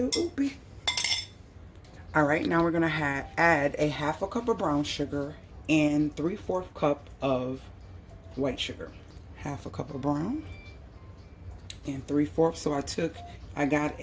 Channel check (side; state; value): both; identical; correlation 1.00